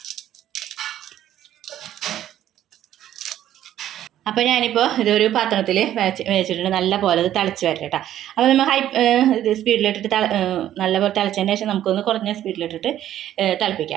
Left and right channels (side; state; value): left; quieter; 11.9 dB